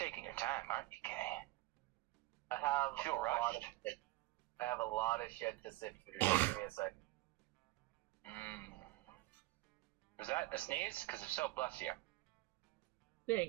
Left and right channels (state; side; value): quieter; left; 19.1 dB